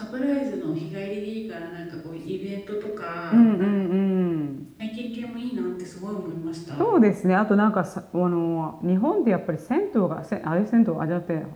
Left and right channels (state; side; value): identical; both; correlation 1.00